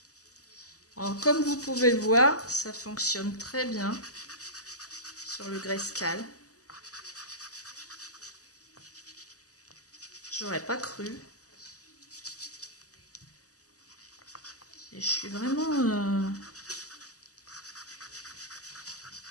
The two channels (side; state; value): right; late; 0.67 ms